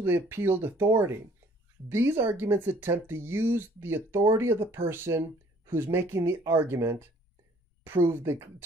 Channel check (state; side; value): normal; both; correlation 0.58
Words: the appealed authority. These arguments attempt to use the authority of the person who's making the argument